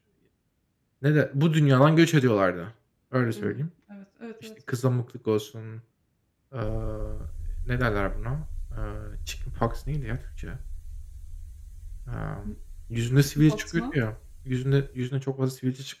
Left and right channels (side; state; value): both; identical; correlation 1.00